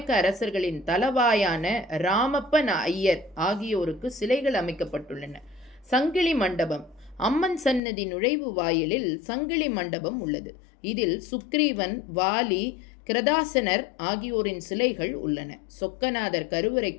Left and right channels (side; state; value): right; drops out; at 7.8 s